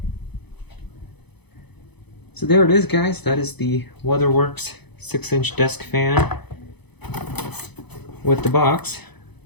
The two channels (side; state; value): right; late; 0.98 ms